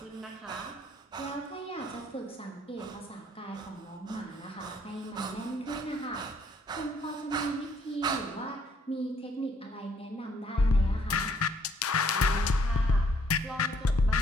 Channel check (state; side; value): normal; both; correlation 0.65